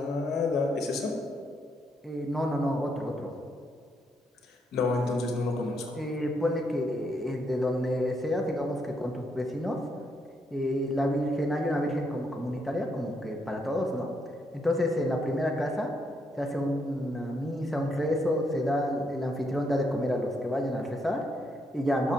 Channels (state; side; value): normal; both; correlation 0.76